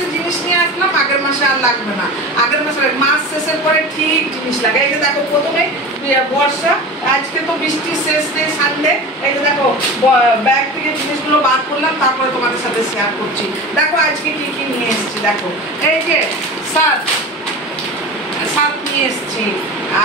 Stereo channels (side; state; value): both; normal; correlation 0.31